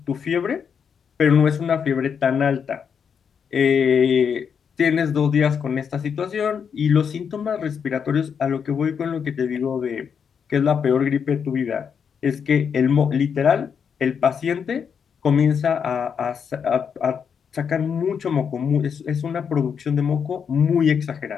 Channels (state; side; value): quieter; right; 7.0 dB